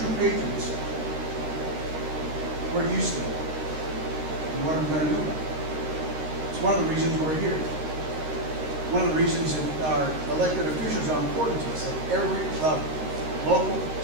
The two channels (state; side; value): late; left; 13 ms